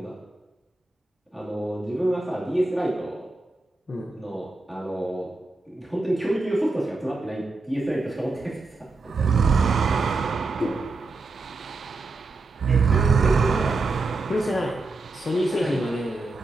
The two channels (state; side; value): quieter; left; 3.3 dB